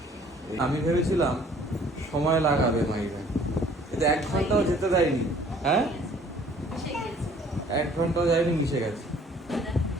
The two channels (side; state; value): both; normal; correlation 0.56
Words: আমি ভেবেছিলাম সময় লাগাবে মাইরা, কিন্তু 1 ঘন্টাও যেতে দেয়নি। হ্যাঁ, 1 ঘন্টাও যায়নি, মিশে গেছে।